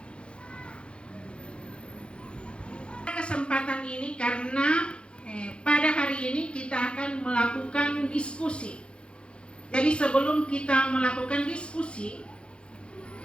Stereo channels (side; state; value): right; late; 0.057 ms